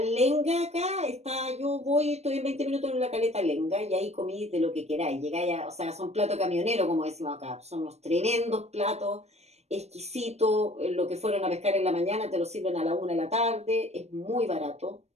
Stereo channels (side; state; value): left; late; 0.31 ms